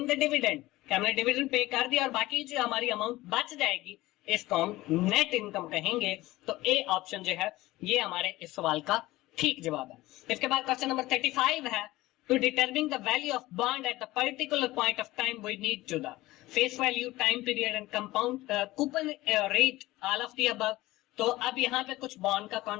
the dividend, कि हमने डिविडेंड पे कर दिया और बाकी जो हमारी अमाउंट बच जाएगी इसको हम नेट इनकम कहेंगे। तो ए ऑप्शन जो है ये हमारे इस सवाल का ठीक जवाब है। इसके बाद क्वेश्चन नंबर 35 है, to determine the value of bond at the particular point of time we need to the face value, time period and compound coupon rate all of the above. तो अब यहाँ पे कुछ बॉन्ड का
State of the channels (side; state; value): right; quieter; 18.1 dB